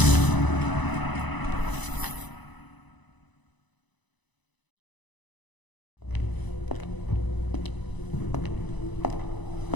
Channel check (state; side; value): late; right; 1.0 ms